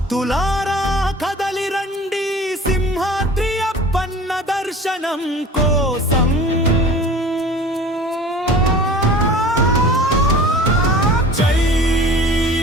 కదలి రండి సింహాద్రి అప్పన్న దర్శనం కోసం. జై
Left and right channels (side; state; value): both; normal; correlation 0.42